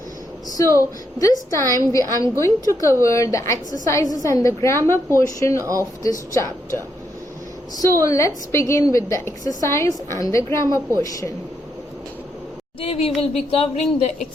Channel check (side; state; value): both; normal; correlation 0.79